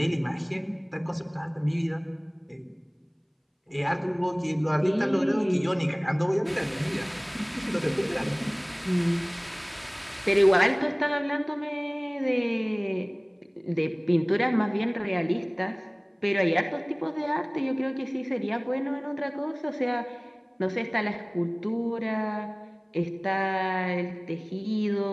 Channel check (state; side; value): identical; both; correlation 1.00